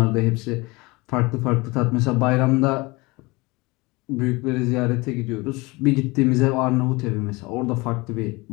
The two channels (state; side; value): quieter; right; 24.2 dB